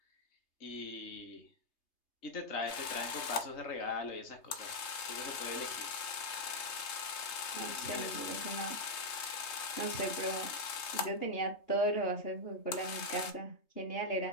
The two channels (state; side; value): late; right; 3.2 ms